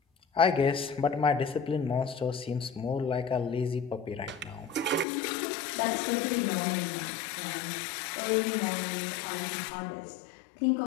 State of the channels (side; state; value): right; drops out; at 5.1 s